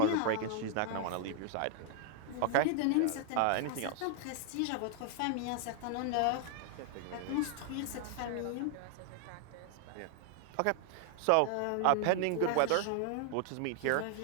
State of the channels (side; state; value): both; different; correlation 0.00